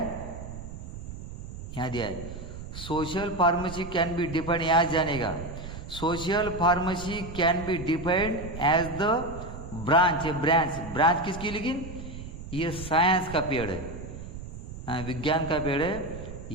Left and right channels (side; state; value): right; noise; rumble, 10 dB below the sound